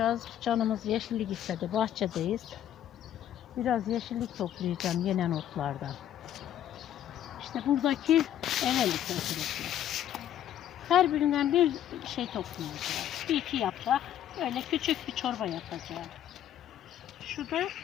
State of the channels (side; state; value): right; quieter; 11.0 dB